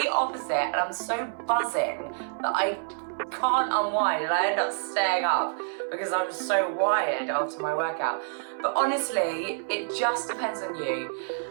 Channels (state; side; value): silent; left; 58 dB below the other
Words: opposite and I'm so buzzing that I can't unwind and I end up staying up because I'm so wired after my workout. But honestly, it just depends on you.